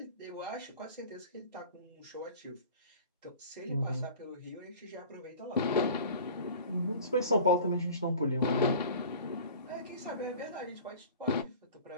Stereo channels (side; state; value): both; inverted; correlation -0.42